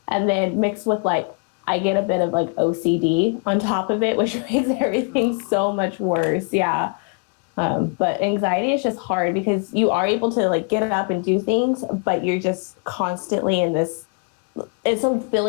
And then mixed with like, I get a bit of like OCD on top of it, which makes everything so much worse. Yeah. But anxiety is just hard because you are able to like get up and do things, but you're just constantly in this, it's a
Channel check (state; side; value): quieter; right; 37.0 dB